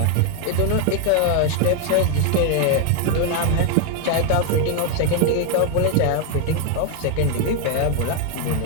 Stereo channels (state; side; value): different; both; correlation 0.01